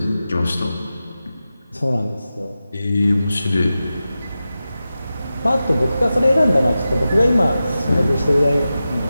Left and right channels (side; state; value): both; inverted; correlation -0.93